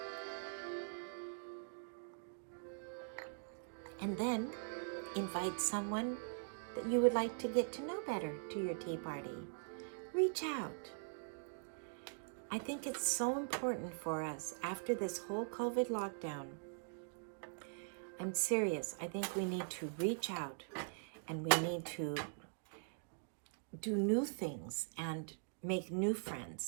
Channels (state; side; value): silent; left; digital silence